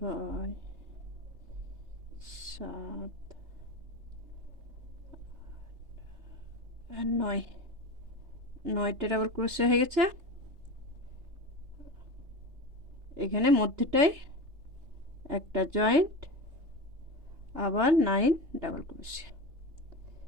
7 আর 9, 9টা ডাবল ক্রোশে হয়ে গেছে। এখানে মধ্যেটাই একটা জয়েন্ট, আবার 9 ডাবল ক্রোশে,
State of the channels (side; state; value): left; late; 3.3 ms